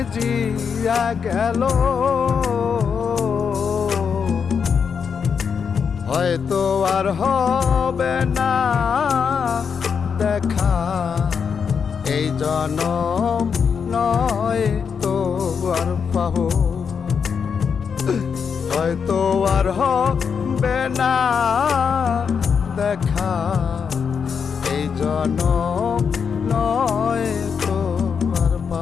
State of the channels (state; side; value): quieter; right; 6.4 dB